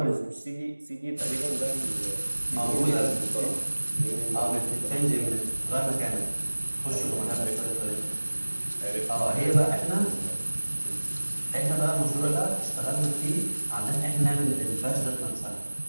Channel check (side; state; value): both; inverted; correlation -1.00